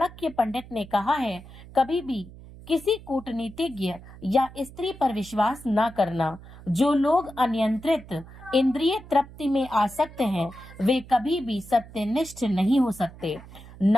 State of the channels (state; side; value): noise; right; hum, 18 dB below the sound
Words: पंडित ने कहा है, कभी भी किसी कूटनीतिज्ञ या स्त्री पर विश्वास न करना। जो लोग अनियंत्रित इंद्रिय तृप्ति में आसक्त हैं, वे कभी भी सत्यनिष्ठ नहीं हो सकते,